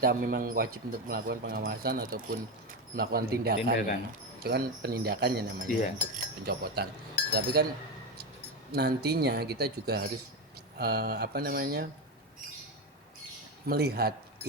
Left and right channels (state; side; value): normal; both; correlation 0.14